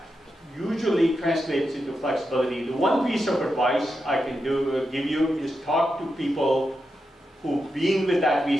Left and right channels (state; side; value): normal; both; correlation 0.87